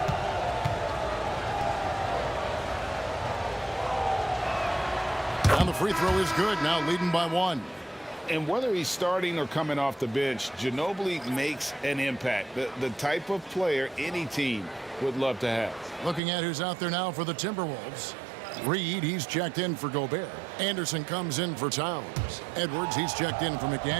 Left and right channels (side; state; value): left; drops out; at 16.2 s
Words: And the free throw is good. Now leading by 1. And whether he's starting or coming off the bench, Ginobili makes an impact. The type of player any team would love to have. Looking at who's out there now for the Timberwolves. Reed, he's checked in for Gobert. Anderson comes in for Towns. Edwards, he's checked in for